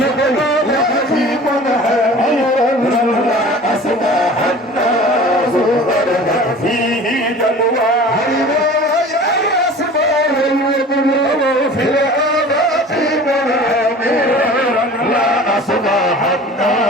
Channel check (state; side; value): normal; both; correlation 0.42